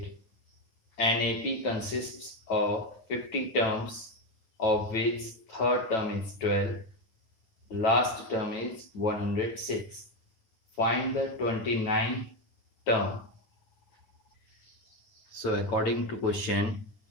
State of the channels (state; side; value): late; right; 9.1 ms